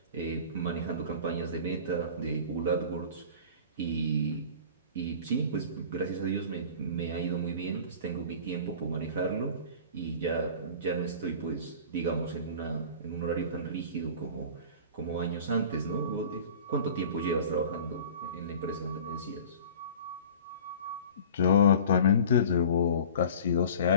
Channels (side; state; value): both; inverted; correlation -0.42